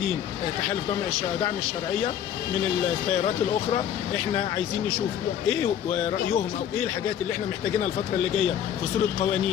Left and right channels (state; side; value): quieter; right; 9.8 dB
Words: تحالف دعم الشرعيه من التيارات الاخرى. احنا عايزين نشوف ايه رايهم او ايه الحاجات اللي احنا محتاجينها الفتره اللي جايه في صوره